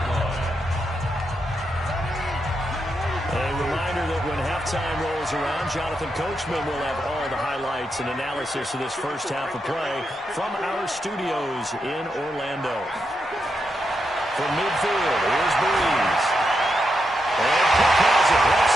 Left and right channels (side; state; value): both; normal; correlation 0.84